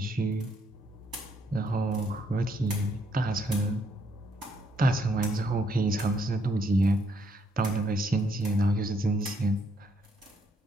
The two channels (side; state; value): both; normal; correlation 0.72